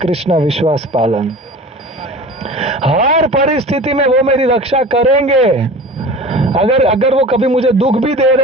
विश्वास पालन। हर परिस्थिति में वो मेरी रक्षा करेंगे। अगर वो कभी मुझे दुख भी दे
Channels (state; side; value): normal; both; correlation 0.38